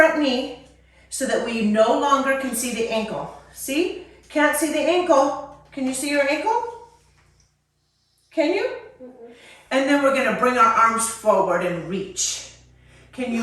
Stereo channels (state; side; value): identical; both; correlation 1.00